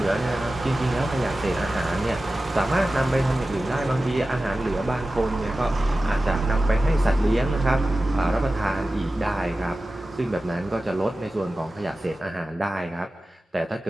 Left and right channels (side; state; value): both; normal; correlation 0.95